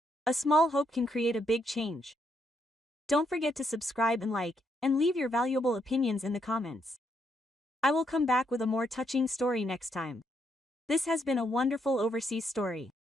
A small hope can create a big change. Don't forget to subscribe and like, and leave your valuable opinions in the comments. I will come back with a more touching story next time. This has been a wonderful overseas story.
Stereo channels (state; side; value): normal; both; correlation 0.76